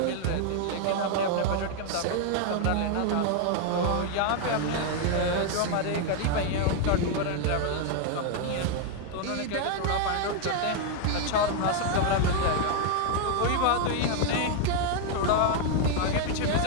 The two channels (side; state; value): both; different; correlation 0.00